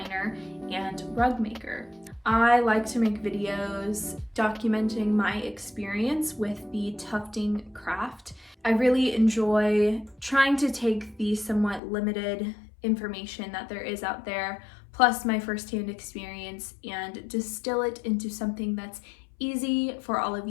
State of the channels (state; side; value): drops out; right; at 11.8 s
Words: and rug maker. I like to make videos documenting my experience with the tufting craft. I really enjoy trying to take the somewhat limited information that there is out there, plus my firsthand experience, and distill it into something that's easy for all of